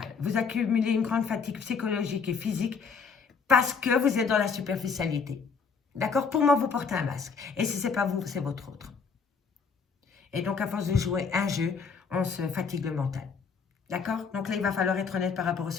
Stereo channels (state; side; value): quieter; right; 5.5 dB